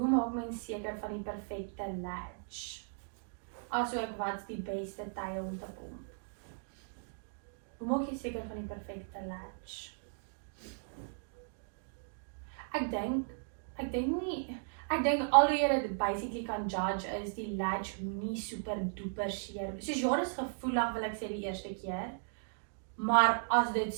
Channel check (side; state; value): left; silent; digital silence